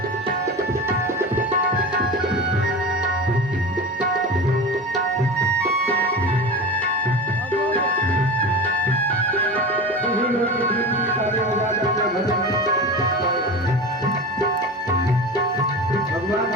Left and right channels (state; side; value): normal; both; correlation 0.29